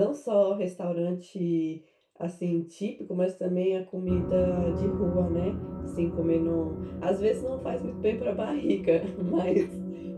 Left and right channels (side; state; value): both; identical; correlation 1.00